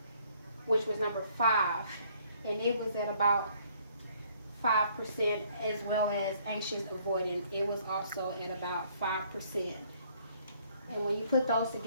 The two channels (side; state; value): both; inverted; correlation -0.63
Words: which was number 5, and it was at about 5%, as well as anxious avoidant. It was also at about 5%. And when you put those